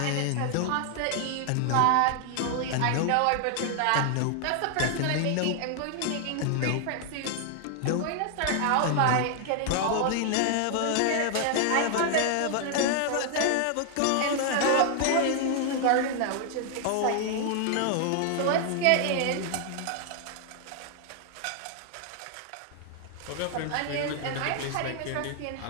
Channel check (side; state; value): both; different; correlation 0.00